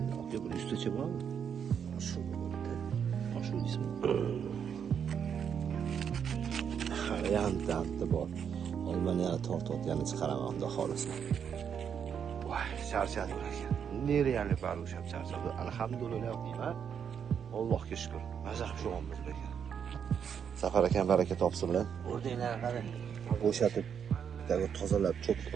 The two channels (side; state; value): left; quieter; 7.7 dB